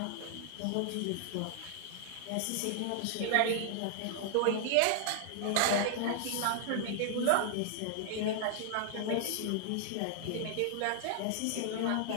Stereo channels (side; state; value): both; different; correlation 0.00